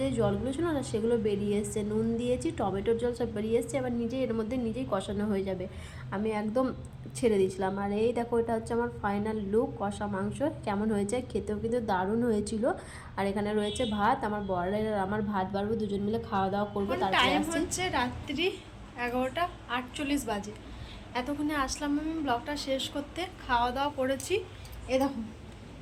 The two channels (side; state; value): both; identical; correlation 1.00